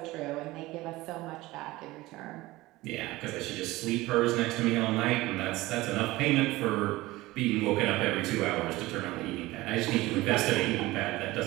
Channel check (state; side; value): quieter; left; 19.1 dB